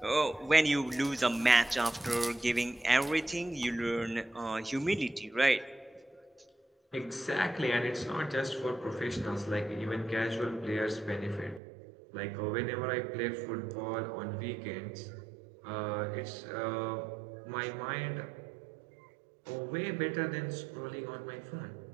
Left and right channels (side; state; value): left; drops out; at 11.6 s